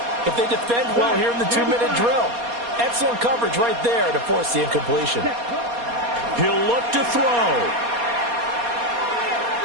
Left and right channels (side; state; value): left; late; 4.2 ms